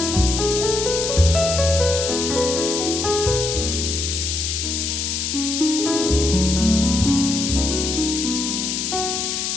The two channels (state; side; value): noise; left; hiss, 2 dB below the sound